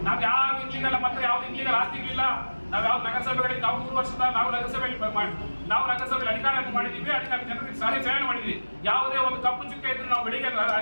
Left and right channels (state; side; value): inverted; both; correlation -1.00